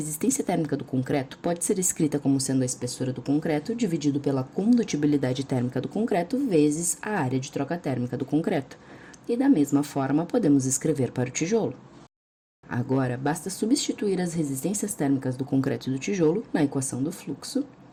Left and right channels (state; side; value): identical; both; correlation 1.00